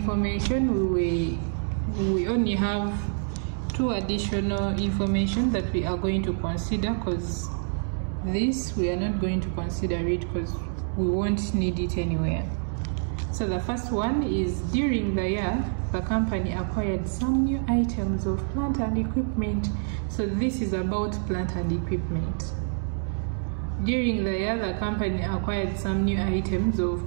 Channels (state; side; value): silent; left; 60 dB below the other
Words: we only have 2 additional information that we are going to consider, because this we are not going to consider it because we won't need it anywhere. So the first one is, during the year the company acquired some new items of plant and equipment. So this is about plant and equipment. During the year, the company acquired some new items